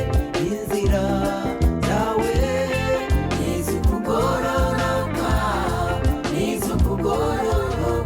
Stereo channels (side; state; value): both; identical; correlation 1.00